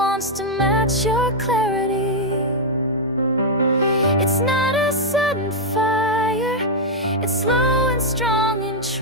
to match your clarity. It's not a sudden fire, it's slow and strong and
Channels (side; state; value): both; normal; correlation -0.02